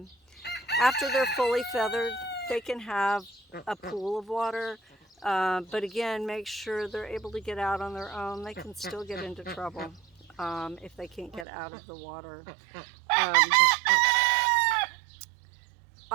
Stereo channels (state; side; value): drops out; left; at 11.5 s